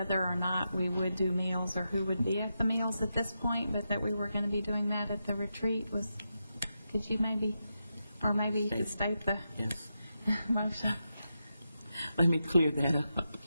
or not we would do meals or who would be at the meals at this point, but that we were going to be doing that at the retreat. Could you maybe you could state the motion? Let me clear that up.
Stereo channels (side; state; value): both; inverted; correlation -0.87